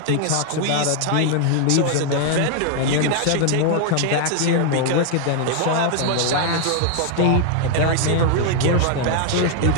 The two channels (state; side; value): different; both; correlation 0.00